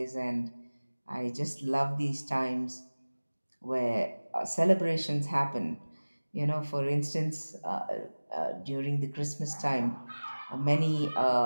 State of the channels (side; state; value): both; inverted; correlation -1.00